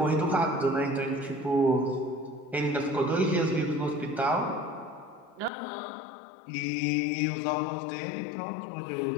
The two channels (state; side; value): drops out; right; at 5.5 s